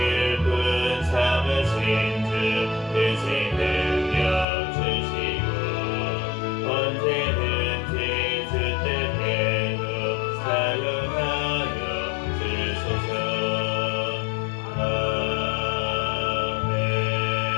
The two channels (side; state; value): right; drops out; at 4.5 s